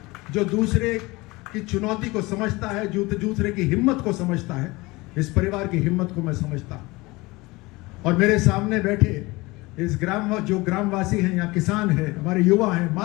जो दूसरे की चुनौती को समझता है, दूसरे की हिम्मत को समझता है। इस परिवार की हिम्मत को मैं समझता हूं। और मेरे सामने बैठे इस जो ग्रामवासी हैं या किसान हैं, हमारे युवा हैं,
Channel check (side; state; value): right; quieter; 22.5 dB